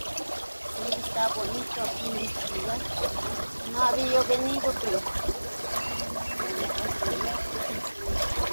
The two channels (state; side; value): inverted; both; correlation -1.00